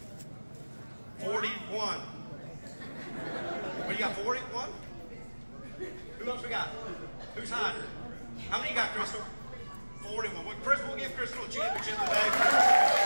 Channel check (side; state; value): both; inverted; correlation -1.00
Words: 41. What do you got, 41? Who else we got? Who's hiding? How many you got, Crystal? 41. Well, Crystal, we'll give Crystal a championship today.